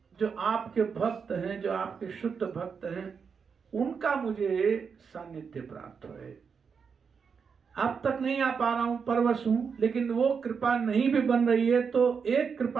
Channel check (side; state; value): left; quieter; 6.0 dB